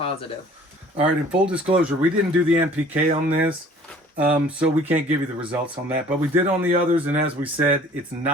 All right, in full disclosure, we didn't do the NPK on this, so we can't give you the results on that. But we did on the others, and as we said, it's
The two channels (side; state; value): both; normal; correlation 0.51